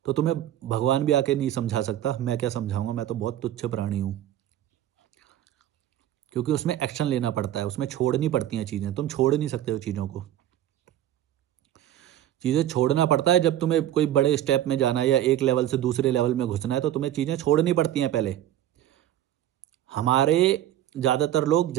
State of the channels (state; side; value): quieter; left; 12.1 dB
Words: तो तुम्हें भगवान भी आके नहीं समझा सकता, मैं क्या समझाऊंगा, मैं तो बहुत तुच्छ प्राणी हूँ। क्योंकि उसमें एक्शन लेना पड़ता है, उसमें छोड़नी पड़ती हैं चीज़ें, तुम छोड़ नहीं सकते हो चीज़ों को। चीज़ें छोड़ना पड़ता है जब तुम्हें कोई बड़े स्टेप में जाना है या एक लेवल से दूसरे लेवल में घुसना है, तो तुम्हें चीज़ें छोड़नी पड़ती हैं पहले। हमारे ज़्यादातर लोग